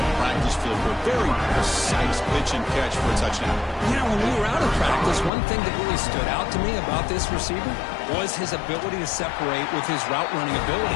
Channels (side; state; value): right; drops out; at 5.3 s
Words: practice field for a very precise pitch and catch for a touchdown. You know, when we were out of practice, one thing that really stood out to me about this receiver was his ability to separate with his route running